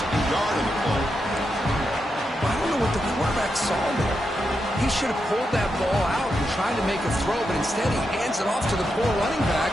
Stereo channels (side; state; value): both; normal; correlation 0.85